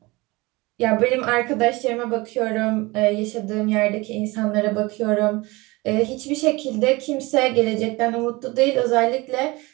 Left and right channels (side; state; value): left; quieter; 23.0 dB